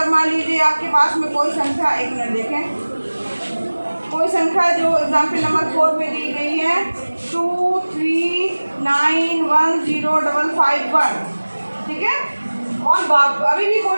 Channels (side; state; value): both; inverted; correlation -1.00